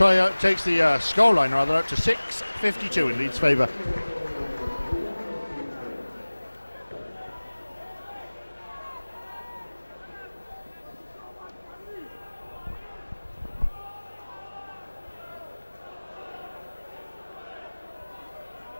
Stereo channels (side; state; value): both; inverted; correlation -1.00